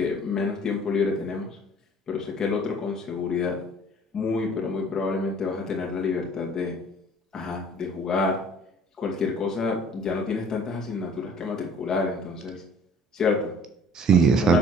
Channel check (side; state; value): both; normal; correlation 0.52